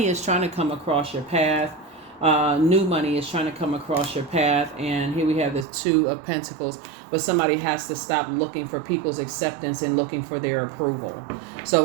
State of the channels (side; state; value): left; drops out; at 5.7 s